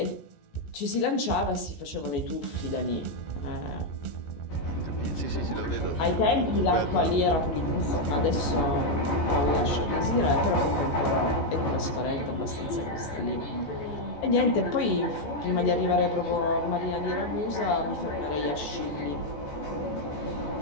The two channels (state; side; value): late; right; 14 ms